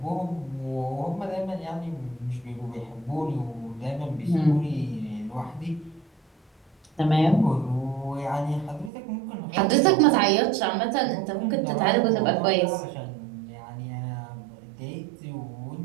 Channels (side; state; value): left; drops out; at 8.9 s